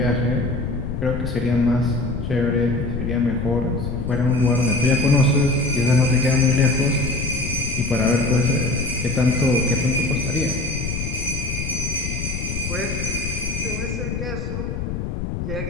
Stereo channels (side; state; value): left; noise; rumble, 4 dB below the sound